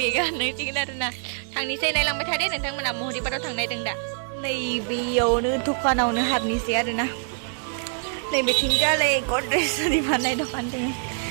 होननांसिगोन आरोना थांनोसै नायलांबाय थादे नोंथांमोना महरिपारायाव थांनो नागिरदों दा नै बेयावनो दखानावनो हाबनोसै आरोना नै बेथिंजाय गद्रेज आरि फाननाय दखान दङ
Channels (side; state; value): left; silent; 62 dB below the other